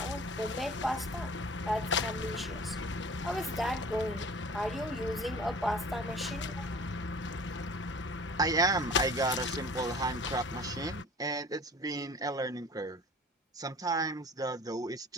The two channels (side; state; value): both; normal; correlation 0.44